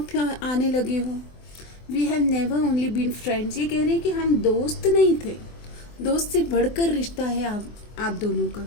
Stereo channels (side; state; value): right; late; 24 ms